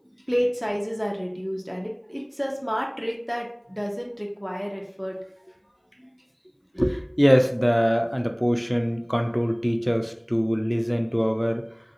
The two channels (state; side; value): identical; both; correlation 1.00